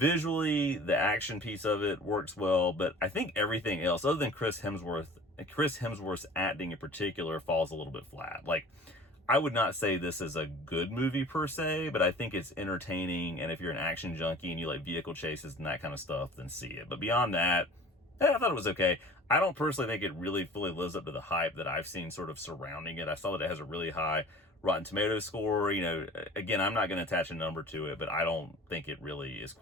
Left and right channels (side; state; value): both; normal; correlation 0.44